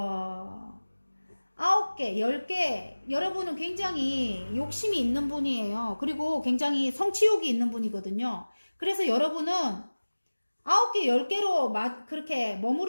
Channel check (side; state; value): both; inverted; correlation -1.00